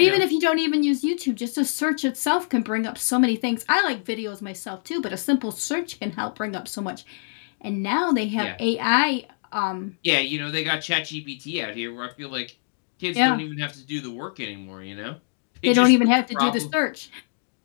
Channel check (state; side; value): silent; right; digital silence